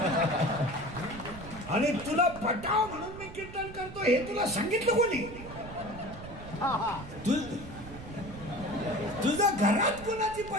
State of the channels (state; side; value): noise; right; rumble, 13 dB below the sound